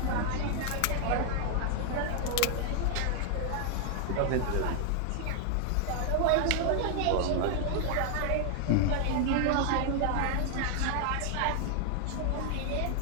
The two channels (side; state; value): both; different; correlation 0.00